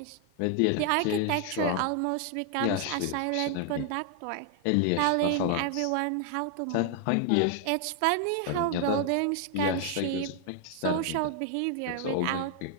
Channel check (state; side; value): different; both; correlation 0.00